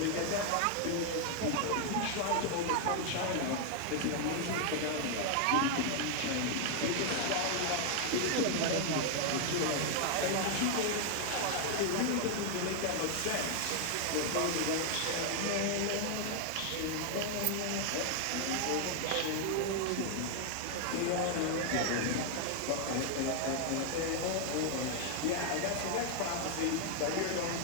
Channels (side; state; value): both; different; correlation 0.00